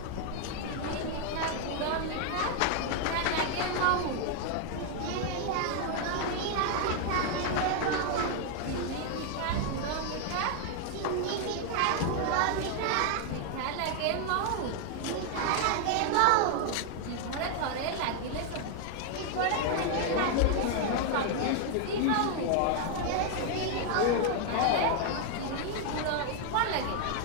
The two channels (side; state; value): both; different; correlation 0.00